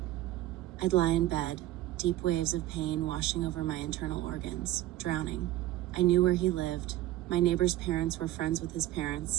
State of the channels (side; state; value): left; quieter; 14.9 dB